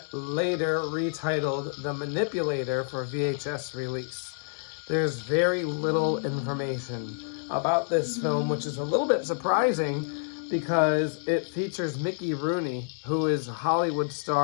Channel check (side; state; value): right; silent; digital silence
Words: later retitled The Manipulator for VHS release. There's very little information about this film, which is a little bit surprising because it features Mickey Rooney, who is a Hollywood